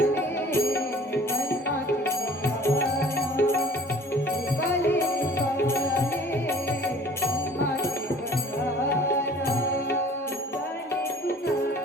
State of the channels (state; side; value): normal; both; correlation 0.49